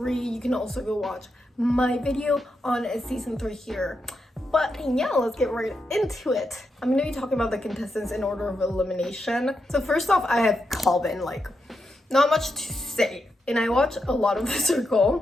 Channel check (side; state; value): both; normal; correlation 0.85